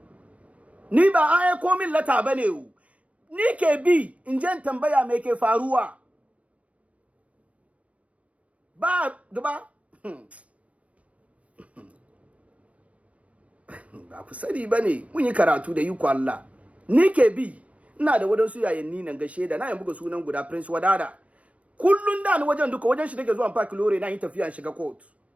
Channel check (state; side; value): late; left; 0.066 ms